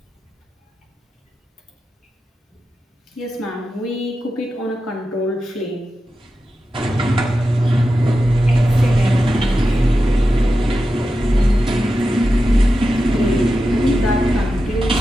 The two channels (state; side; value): normal; both; correlation 0.91